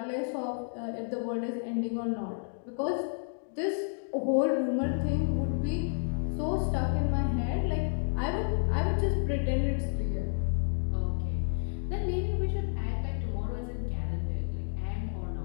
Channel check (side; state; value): right; silent; 57 dB below the other